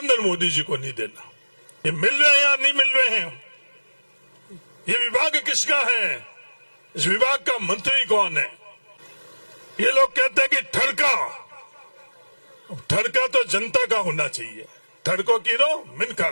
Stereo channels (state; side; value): inverted; both; correlation -1.00